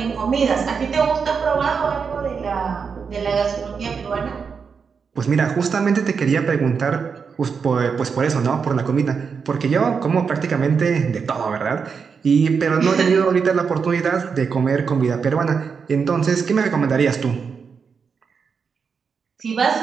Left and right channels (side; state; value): left; quieter; 5.9 dB